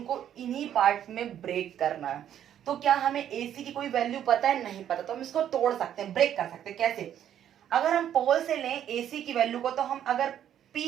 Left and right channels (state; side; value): quieter; left; 10.3 dB